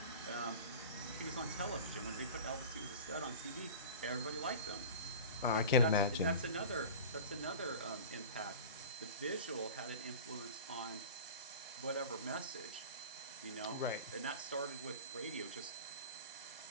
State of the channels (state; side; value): inverted; both; correlation -0.35